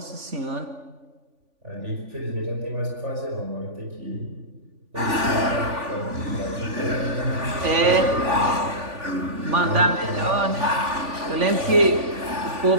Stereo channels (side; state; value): left; late; 3.5 ms